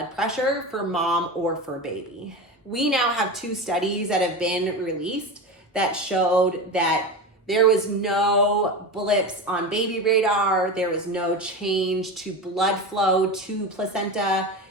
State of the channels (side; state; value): both; normal; correlation 0.24